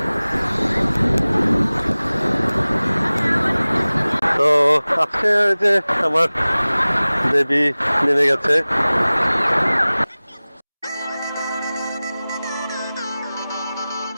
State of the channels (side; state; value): both; inverted; correlation -0.99